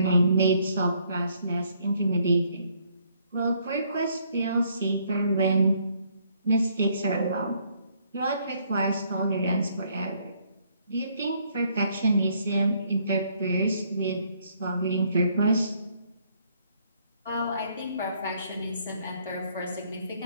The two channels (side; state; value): both; inverted; correlation -0.68